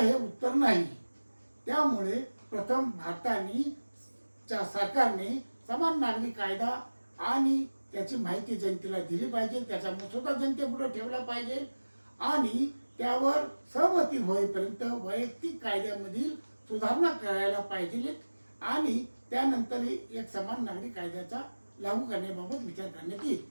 उत्तर नाही. त्यामुळे प्रथम सरकारने समान नागरी कायदा आणि त्याची माहिती जनतेला दिली पाहिजे, त्याचा मसुदा जनतेपुढे ठेवला पाहिजे आणि त्यावर सहमती होईपर्यंत वैयक्तिक कायद्यामधील सुधारणा करायला पाहिजे आणि त्यानंतर एक समान नागरी कायद्याचा लागू करण्याबाबत विचार करण्यात येईल.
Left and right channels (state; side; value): inverted; both; correlation -1.00